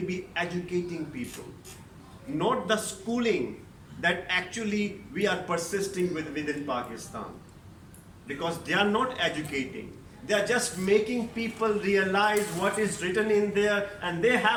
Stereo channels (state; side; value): identical; both; correlation 1.00